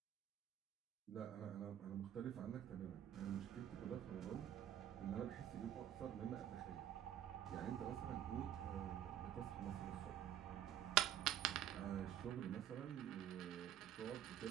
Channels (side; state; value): left; quieter; 10.8 dB